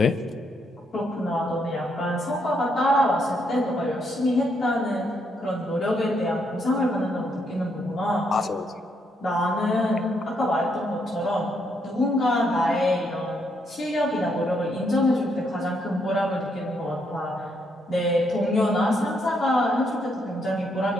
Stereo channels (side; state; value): both; normal; correlation 0.75